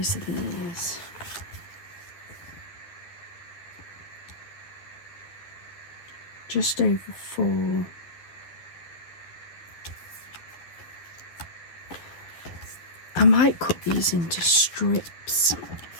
are these? Just over 4. I might cut these into strips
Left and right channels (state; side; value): late; right; 11 ms